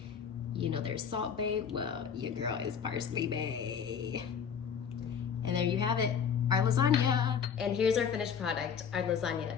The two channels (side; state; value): right; quieter; 7.2 dB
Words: You know there's Salt Bae, well, your girl is Parsley Bae. And there you have it, our lasagna. And here's our finished product, our lasagna.